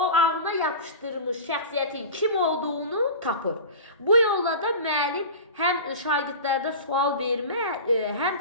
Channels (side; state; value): both; inverted; correlation -0.32